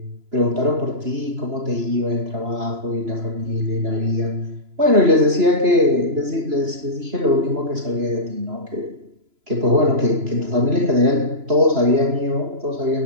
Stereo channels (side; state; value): left; late; 3.0 ms